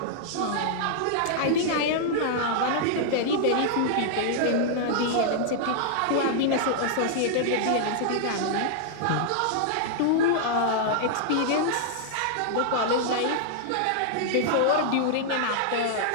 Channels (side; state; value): both; different; correlation -0.01